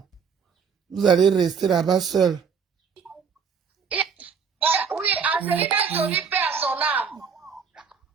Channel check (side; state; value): left; quieter; 6.2 dB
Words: Vous allez rester là-bas seul. Oui, Angelina Jolie paie à son âme.